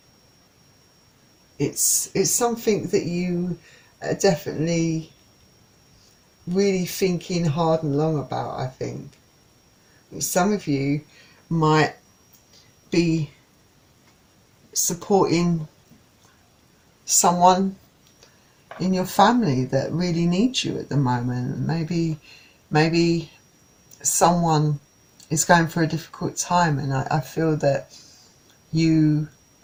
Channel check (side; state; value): both; identical; correlation 1.00